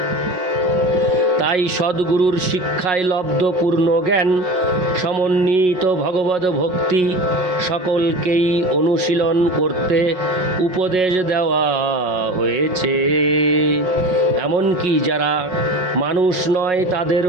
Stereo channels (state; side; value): late; left; 5.5 ms